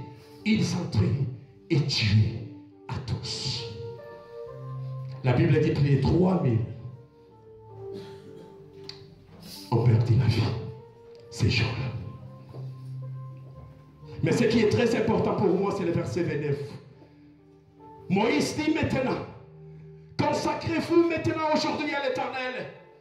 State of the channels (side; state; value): both; identical; correlation 1.00